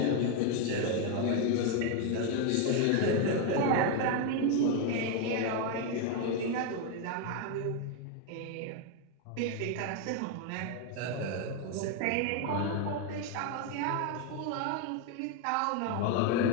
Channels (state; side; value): different; both; correlation 0.01